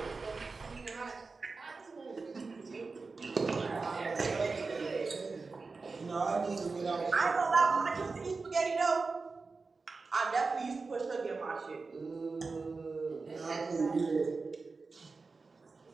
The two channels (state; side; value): quieter; left; 4.2 dB